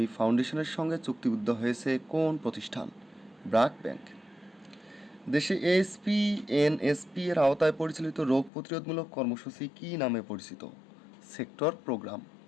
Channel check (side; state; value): right; drops out; at 8.5 s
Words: ফাউন্ডেশনের সঙ্গে চুক্তিবদ্ধ হয়েছে কোন প্রতিষ্ঠান? ব্র্যাক ব্যাংক। দেশে HPNSP এর আওতায় পরিচালিত রোগ প্রতিরোধমূলক কর্মসূচি কী নামে পরিচিত? Sector program.